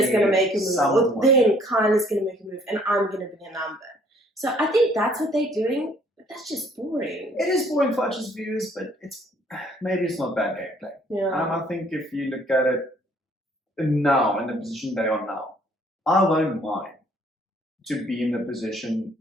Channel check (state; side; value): normal; both; correlation 0.61